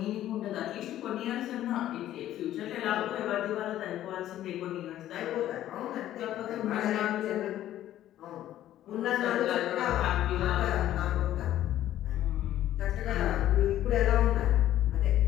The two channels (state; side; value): quieter; right; 12.7 dB